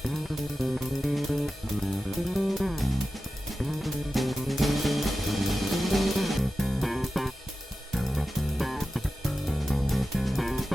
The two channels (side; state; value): both; normal; correlation 0.93